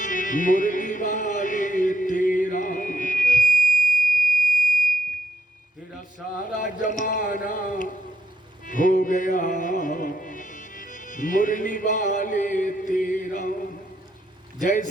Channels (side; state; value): both; normal; correlation 0.76